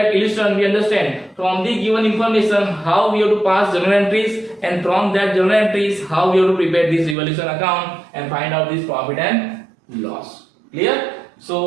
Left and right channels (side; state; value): left; drops out; at 7.2 s